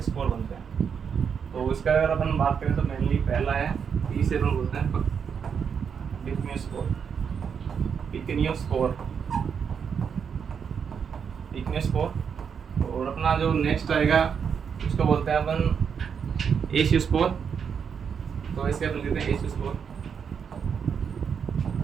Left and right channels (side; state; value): left; quieter; 6.9 dB